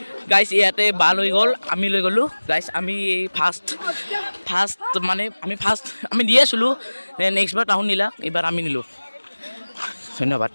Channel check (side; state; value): both; inverted; correlation -1.00